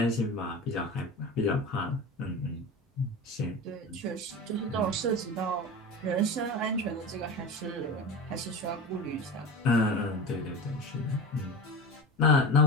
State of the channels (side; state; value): both; normal; correlation 0.29